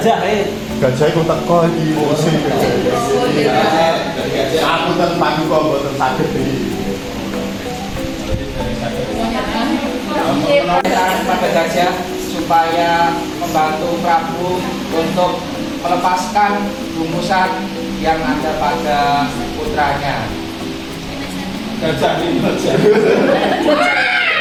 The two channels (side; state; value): both; identical; correlation 1.00